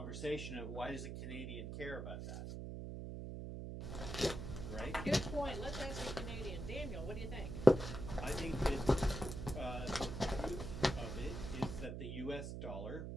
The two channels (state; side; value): noise; right; hum, 6 dB below the sound